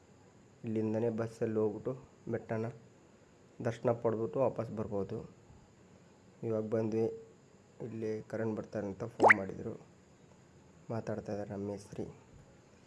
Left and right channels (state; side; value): identical; both; correlation 1.00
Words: ಇಲ್ಲಿಂದನೇ ಬಸ್ಸಲ್ಲಿ ಹೋಗ್ಬಿಟ್ಟು ಬೆಟ್ಟನ ದರ್ಶನ ಪಡೆದ್ಬಿಟ್ಟು ವಾಪಸ್ ಬರ್ಬೋದು. ಇವಾಗ ಬಂದ್ವಿ. ಇಲ್ಲಿ ಕರೆಂಟ್ ಬರ್ತಾರೆ ಅಂತ ಫೋನ್ ಮಾಡಿದರು. ಮಾತಾಡ್ತಾ ಇದ್ದಾರೆ ನಮ್ಮ ಮೇಸ್ತ್ರಿ.